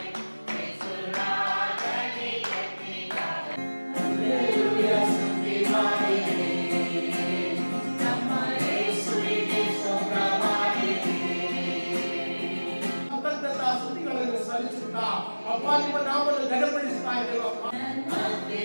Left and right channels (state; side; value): inverted; both; correlation -1.00